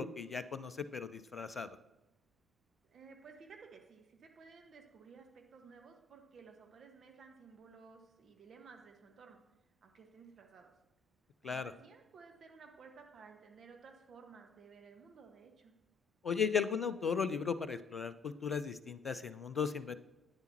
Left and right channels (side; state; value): right; quieter; 5.6 dB